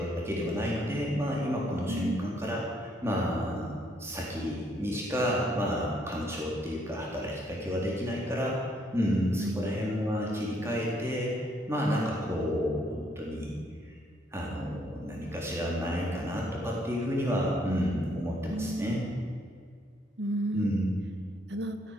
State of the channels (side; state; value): both; normal; correlation 0.70